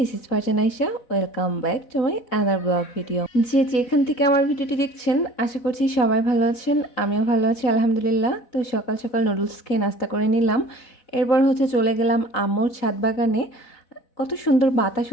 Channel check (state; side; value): late; right; 4.0 ms